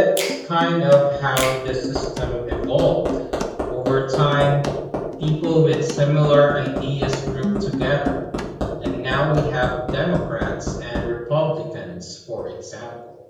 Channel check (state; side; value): identical; both; correlation 1.00